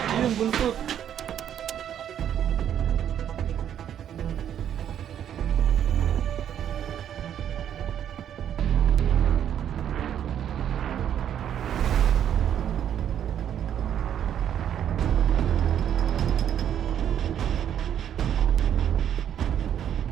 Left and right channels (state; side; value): quieter; left; 9.7 dB